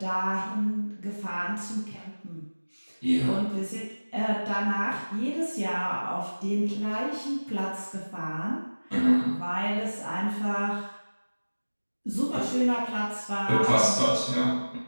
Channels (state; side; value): inverted; both; correlation -1.00